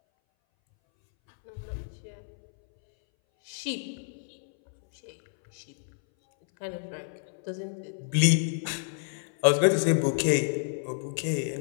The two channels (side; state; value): right; silent; 59 dB below the other